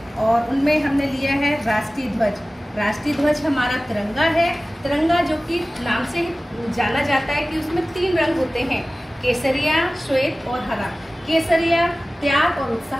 और उनमें हमने लिया है राष्ट्रीय ध्वज। राष्ट्रीय ध्वज हमारा तिरंगा है। तिरंगा जो कि नाम से ही जाना जाता है कि उसमें 3 रंग होते हैं, केसरिया, श्वेत और हरा। केसरिया त्याग और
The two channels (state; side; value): normal; both; correlation 0.97